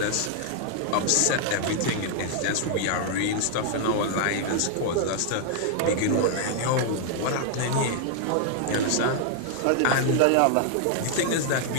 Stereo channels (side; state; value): both; different; correlation 0.00